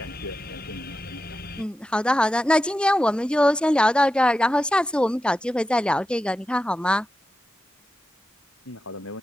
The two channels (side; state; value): both; normal; correlation 0.91